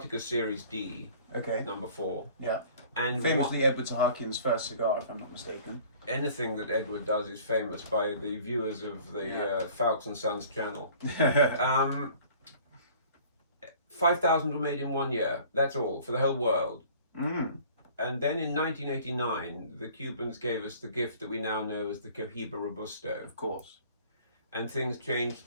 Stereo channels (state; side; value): inverted; both; correlation -0.50